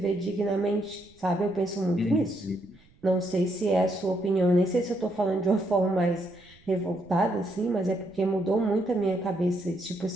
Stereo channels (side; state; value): right; noise; rumble, 29 dB below the sound